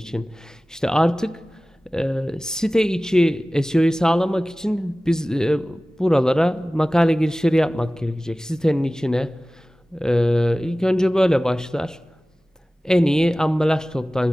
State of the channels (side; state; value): both; normal; correlation 0.97